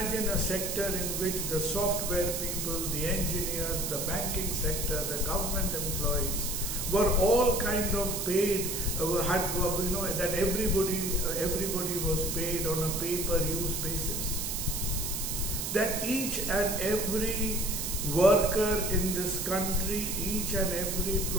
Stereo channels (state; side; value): noise; right; hiss, 3 dB below the sound